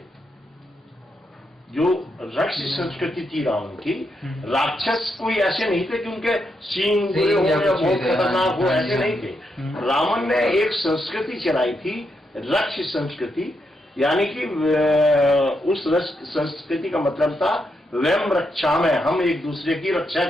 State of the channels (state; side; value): normal; both; correlation 0.81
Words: जो राक्षस संस्कृति थी रावण की, राक्षस कोई ऐसे नहीं थे कि उनके सींग हो या बहुत खतरनाक हो, ऐसे नहीं थे। रावण ने एक संस्कृति चलाई थी, राक्षस संस्कृति, यानी कि उस संस्कृति का मतलब था वयम रक्षा में, हम एक दूसरे की रक्षा